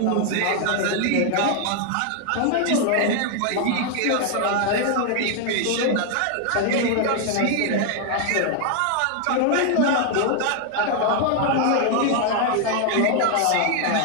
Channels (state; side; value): different; both; correlation 0.00